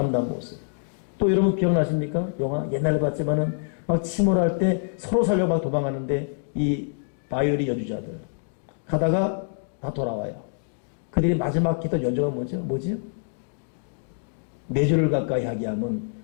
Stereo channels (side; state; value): right; silent; digital silence